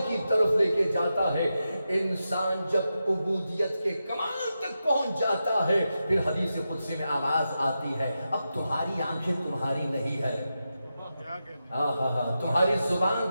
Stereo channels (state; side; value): inverted; both; correlation -0.89